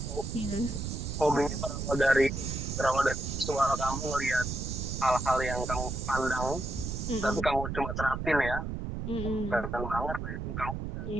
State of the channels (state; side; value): noise; right; rumble, 4 dB below the sound